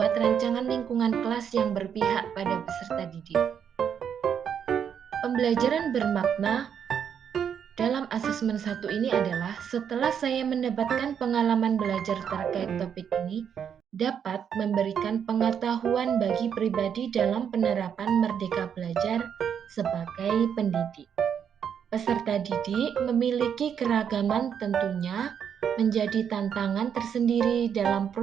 rancangan lingkungan kelas yang berpihak pada peserta didik. Pembelajaran bermakna dalam asesmen 1 ini adalah setelah saya mendapatkan pengalaman belajar terkait topik ini, dapat memberikan pengetahuan bagi pribadi dalam penerapan merdeka belajar sebagai pendidik. Peserta didik memiliki keragaman tentunya menjadi tantangan tersendiri dalam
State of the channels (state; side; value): quieter; left; 8.0 dB